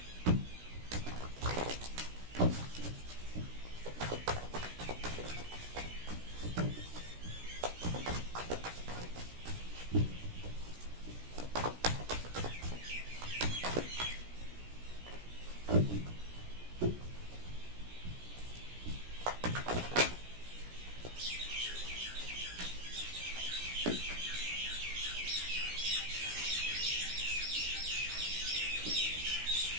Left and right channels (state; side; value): late; left; 17 ms